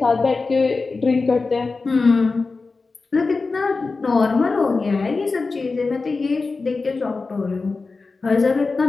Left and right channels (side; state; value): right; quieter; 4.0 dB